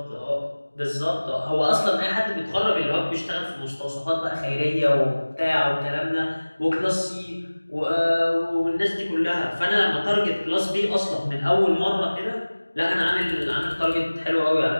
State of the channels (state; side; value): inverted; both; correlation -1.00